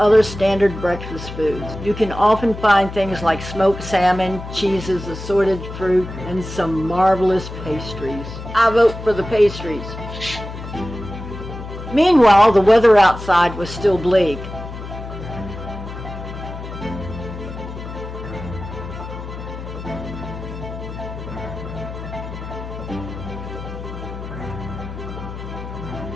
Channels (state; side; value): noise; left; hum, 10 dB below the sound